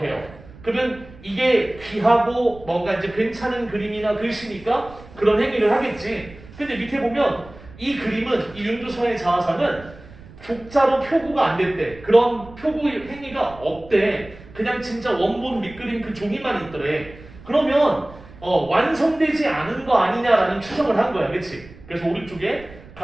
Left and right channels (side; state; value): right; noise; rumble, 20 dB below the sound